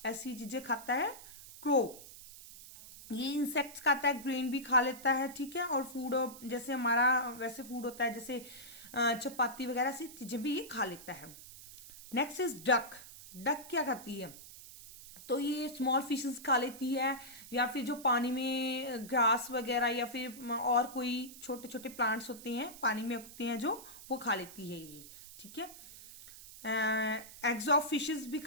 ऐसी चीजें खाता है। क्रो ये इंसेक्ट्स खाता है, ग्रेन भी खा लेता है, ठीक है, और फूड जैसे हमारा वैसे फूड होता है, जैसे चपाती वगैरह ऐसी चीजें भी ये खा लेता है। नेक्स्ट इज डक, डक क्या खाती है, तो ये स्मॉल फिशेस खा लेती है, या फिर जो पानी में ग्रास वगैरह या फिर और कोई छोटे छोटे प्लांट्स होते हैं पानी में उगते हैं जो, वो खा लेती है ये, ठीक है। एग्स ऑफ फिशेस भी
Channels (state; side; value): noise; right; hiss, 16 dB below the sound